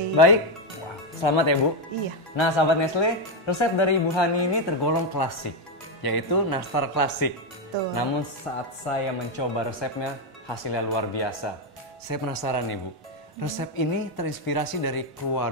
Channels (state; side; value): normal; both; correlation 0.05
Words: Baik. Wah, selamat ya Bu. Iya. Nah sahabat Nestle, resep dari Ibu Hani ini tergolong klasik, yaitu nastar klasik. Betul. Namun saat saya mencoba resepnya, hasilnya luar biasa. Saya penasaran nih Bu, resep ini terinspirasi dari